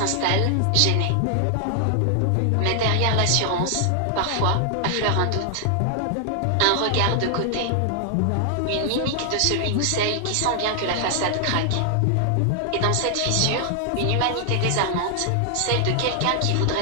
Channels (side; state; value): both; different; correlation 0.00